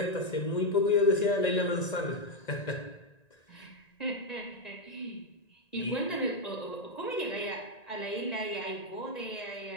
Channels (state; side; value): late; right; 1.9 ms